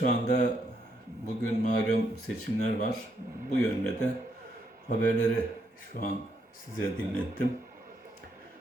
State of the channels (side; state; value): both; normal; correlation 0.76